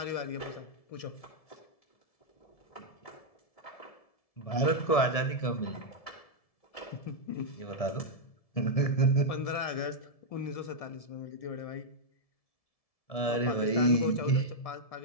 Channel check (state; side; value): late; right; 1.7 ms